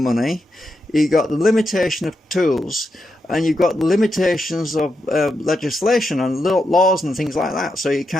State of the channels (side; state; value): both; normal; correlation 0.85